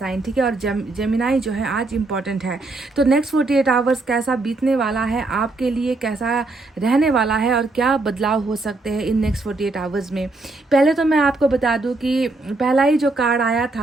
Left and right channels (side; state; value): left; quieter; 3.2 dB